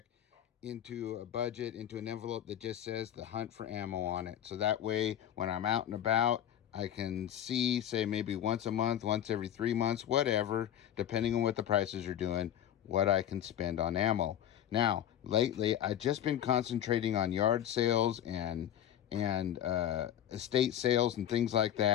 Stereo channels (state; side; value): quieter; right; 10.7 dB